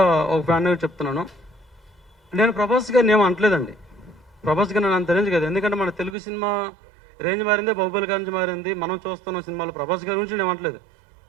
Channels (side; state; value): left; drops out; at 6.2 s